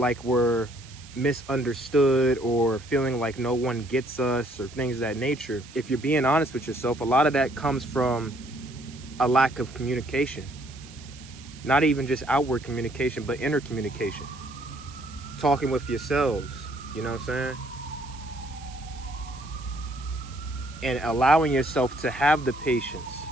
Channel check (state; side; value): noise; right; hiss, 20 dB below the sound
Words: we're misunderstood, or feeling like no one gets us, or things of that nature. If you're being honest with yourself, a lot of that comes from a lack of communication. Not even just outward communication, but inner communication. Talking with yourselves, you know what I'm saying? And allowing yourself to have the patience